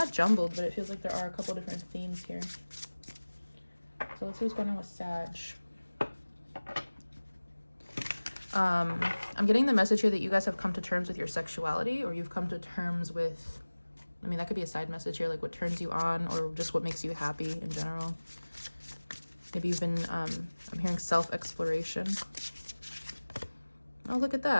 jumbled, but it feels like there are a couple different themes here. So let's see what's going on with Sag. I'm getting the message here that you guys have come to terms with your sexuality, or you've come to terms with, I mean, that could be a side message here, like what turns you on, or just what makes you happy in general. Maybe you've been, I'm hearing self-exploration. Oh, look at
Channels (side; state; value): both; inverted; correlation -1.00